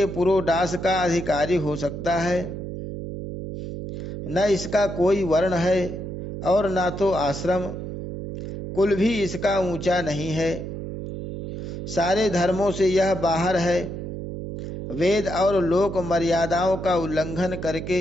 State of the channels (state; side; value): noise; right; hum, 7 dB below the sound